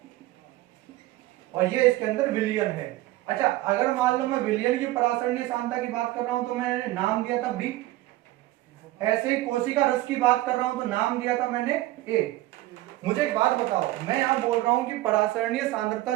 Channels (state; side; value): quieter; left; 17.0 dB